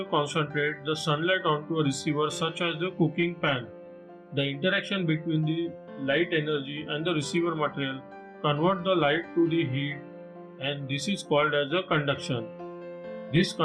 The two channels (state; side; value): identical; both; correlation 1.00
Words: concentrates the sunlight onto a receiver such as the cooking pan. The interaction between the light energy and the receiver material convert the light to the heat, and this is called as a conduction. This